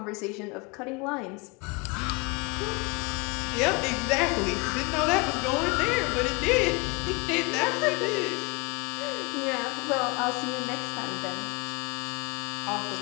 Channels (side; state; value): right; quieter; 28.8 dB